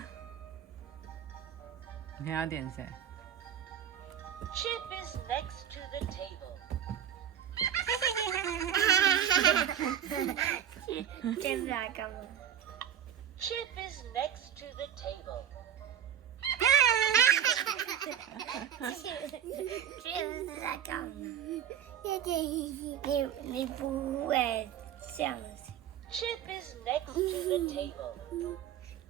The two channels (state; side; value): quieter; left; 9.7 dB